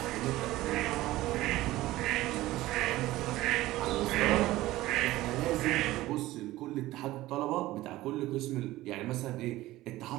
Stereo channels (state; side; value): quieter; left; 16.9 dB